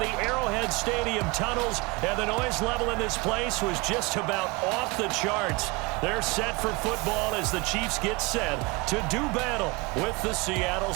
the Arrowhead Stadium tunnels, and the noise level in this place was just about off the charts. They're set for football as the Chiefs get set to do battle with the Seattle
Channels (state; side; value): quieter; left; 25.5 dB